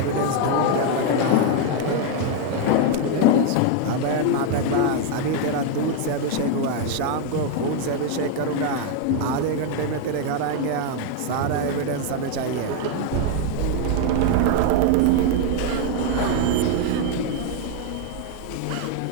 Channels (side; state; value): both; different; correlation 0.01